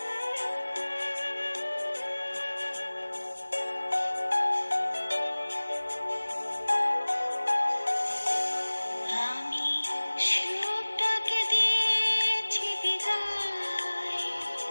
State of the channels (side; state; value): both; inverted; correlation -1.00